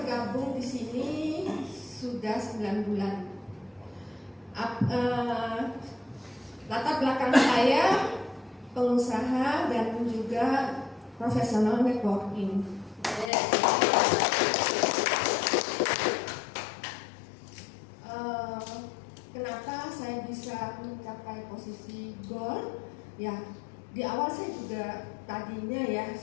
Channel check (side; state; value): right; drops out; at 13.3 s